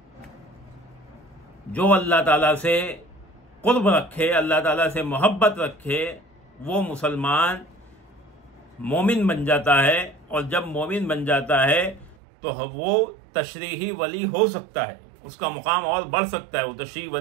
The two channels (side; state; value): left; drops out; at 12.2 s